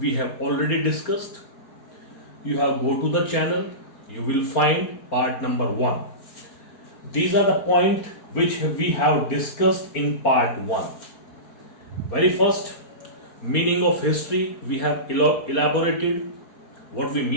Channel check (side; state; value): right; late; 4.3 ms